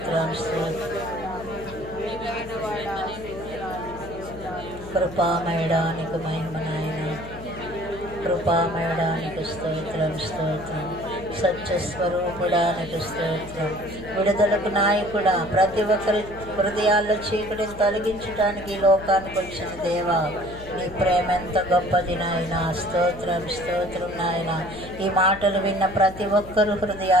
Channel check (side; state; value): left; noise; hum, 15 dB below the sound